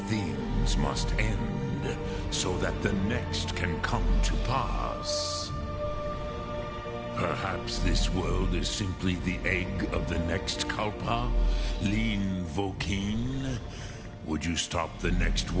must end, so that the next can come to pass. Perhaps this world is simply the egg of the next Kalpa, Lin Vokin. Would you stop the next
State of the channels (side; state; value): both; identical; correlation 1.00